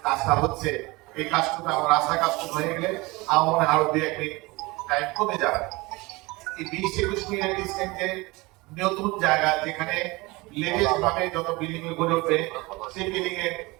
কাজটা হচ্ছে, এই কাজটা আমার রাস্তা কাজ হয়ে গেলে আমার মনে হয় আরো 2-1 মিনিট টাইম কমে যাবে। এই 20-21 মিনিটের ডিস্টেন্সে নতুন জায়গা যেখানে লেটেস্ট ভাবে যত বিল্ডিং গড়ে উঠবে, সেই বিল্ডিং এর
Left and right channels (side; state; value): left; quieter; 23.2 dB